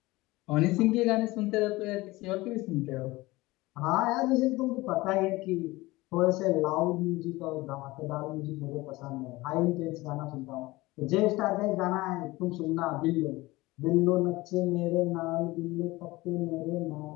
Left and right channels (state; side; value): quieter; right; 20.4 dB